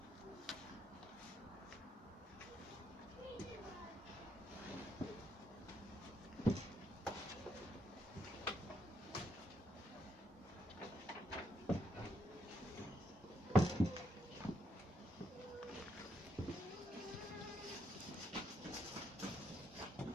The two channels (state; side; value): normal; both; correlation 0.77